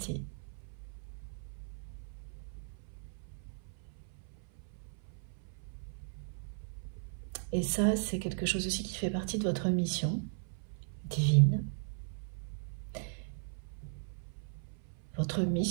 Et ça, c'est quelque chose aussi qui fait partie de votre mission divine, votre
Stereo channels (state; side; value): silent; left; 53 dB below the other